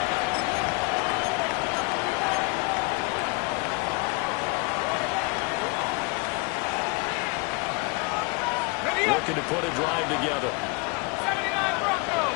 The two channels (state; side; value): quieter; right; 29.6 dB